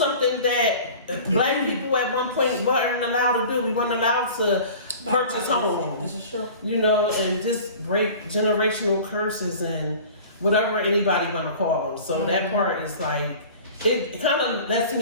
that black people at one point weren't allowed to do. We weren't allowed to purchase homes. This is true. And just break generational curses and whatever anybody want to call them. So that part is like, it kind of lets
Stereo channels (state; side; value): inverted; both; correlation -0.42